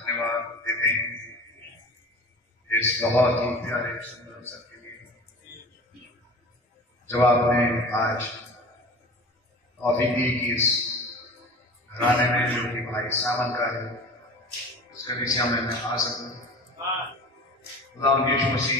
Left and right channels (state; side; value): normal; both; correlation 0.37